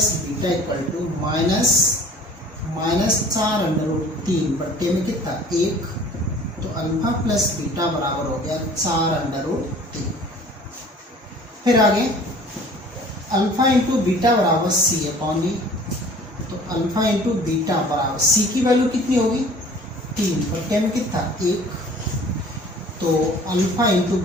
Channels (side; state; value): both; normal; correlation 0.48